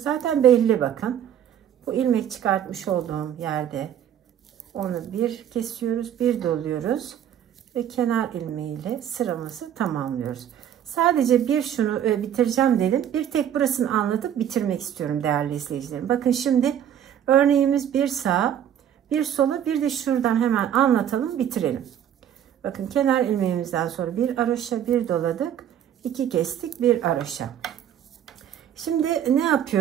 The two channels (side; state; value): left; quieter; 9.9 dB